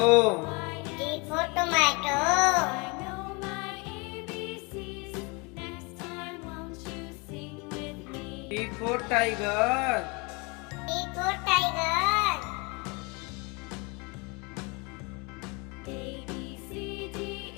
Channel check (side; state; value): right; quieter; 29.4 dB